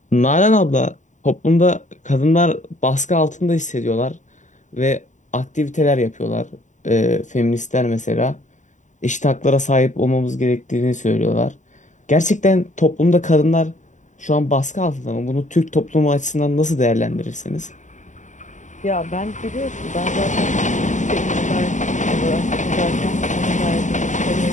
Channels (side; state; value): right; late; 0.36 ms